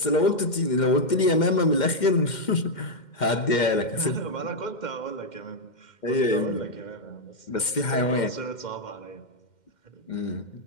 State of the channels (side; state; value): right; late; 2.1 ms